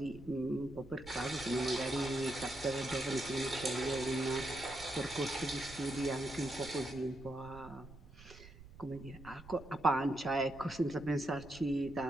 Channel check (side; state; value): right; noise; rumble, 17 dB below the sound